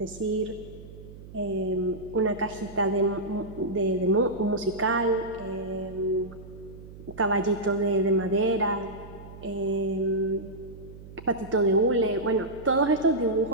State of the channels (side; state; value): right; noise; hum, 16 dB below the sound